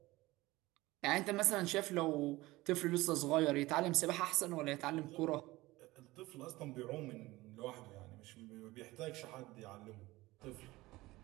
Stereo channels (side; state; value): left; quieter; 19.5 dB